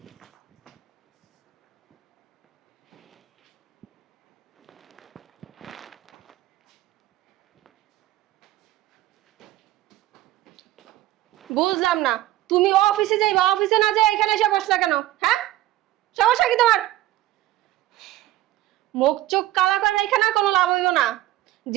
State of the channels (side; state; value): left; quieter; 15.3 dB